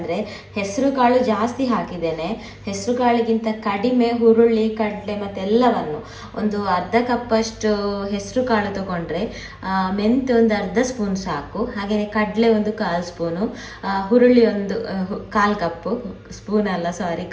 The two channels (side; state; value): both; identical; correlation 1.00